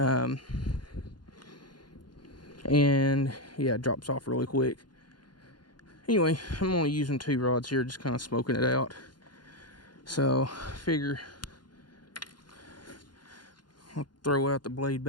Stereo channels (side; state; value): right; late; 0.71 ms